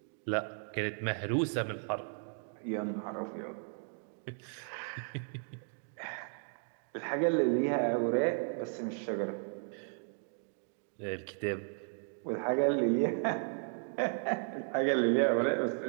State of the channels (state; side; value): silent; left; 54 dB below the other